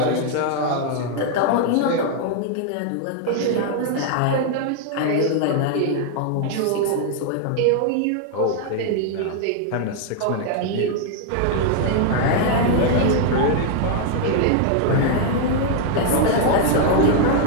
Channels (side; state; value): both; different; correlation 0.00